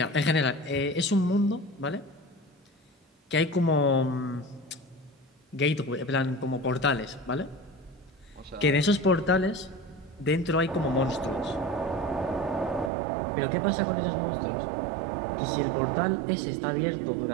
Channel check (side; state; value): left; drops out; at 12.9 s